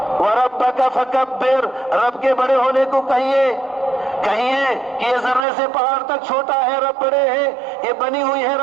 وربک فکبر، رب کے بڑے ہونے کو کہیے کہ یہ ذرے سے پہاڑ تک چھوٹا ہے، رب بڑے ہے. یہ بنی ہوئی ہے،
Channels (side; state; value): left; drops out; at 5.5 s